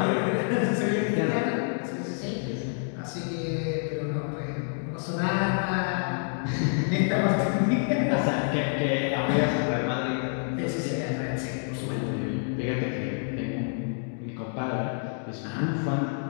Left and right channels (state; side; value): silent; right; 59 dB below the other